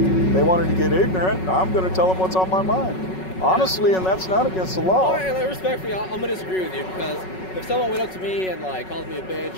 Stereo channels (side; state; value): right; late; 5.4 ms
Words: they wanted to get ignorant. I'm going to tell them what's on my mind. Honestly, and that's not against the law. Well, respectfully, I'm going to disagree with you, because if someone went up to me and like called me a